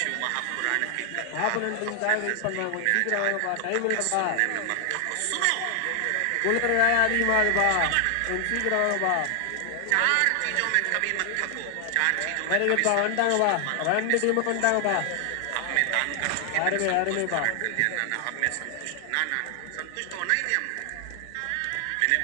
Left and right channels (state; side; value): different; both; correlation 0.00